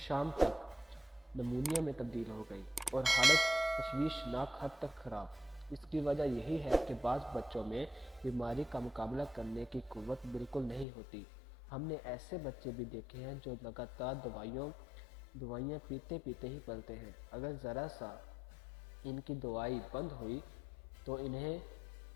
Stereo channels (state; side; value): drops out; right; at 10.9 s